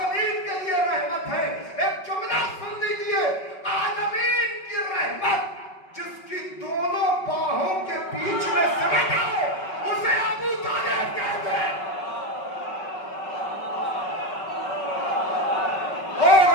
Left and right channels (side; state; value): right; late; 5.3 ms